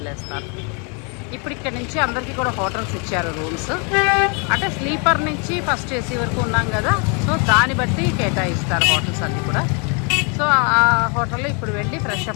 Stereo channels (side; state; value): right; quieter; 35.3 dB